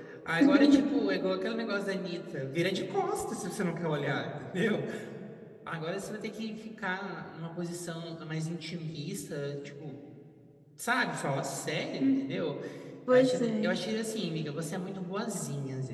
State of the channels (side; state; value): both; identical; correlation 1.00